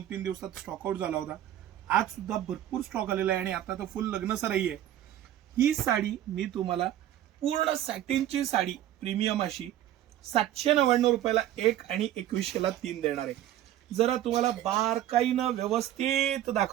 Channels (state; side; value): quieter; left; 12.4 dB